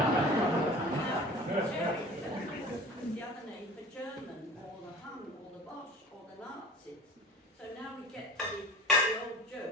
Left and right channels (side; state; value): both; normal; correlation 0.39